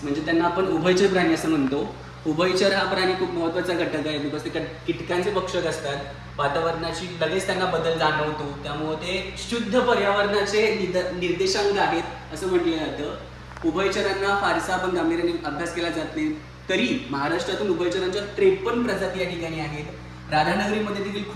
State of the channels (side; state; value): both; identical; correlation 1.00